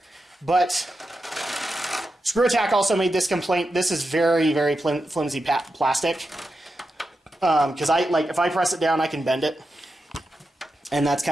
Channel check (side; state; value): both; normal; correlation 0.89